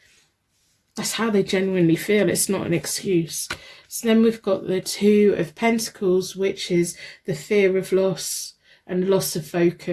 That's how they genuinely feel. It's not an excuse. So then we've got the Two of Pentacles, which is the fear of loss and loss of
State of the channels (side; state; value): both; identical; correlation 1.00